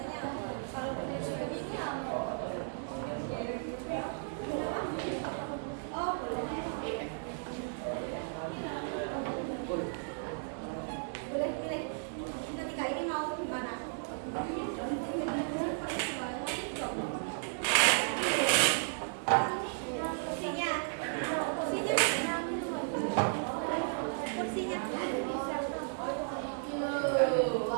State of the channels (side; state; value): left; silent; digital silence